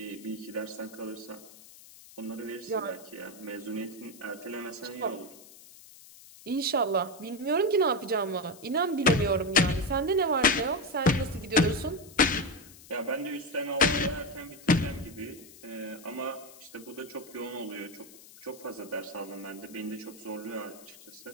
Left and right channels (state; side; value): noise; left; hiss, 20 dB below the sound